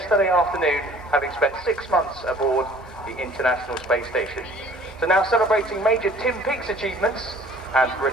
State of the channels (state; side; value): noise; right; hum, 28 dB below the sound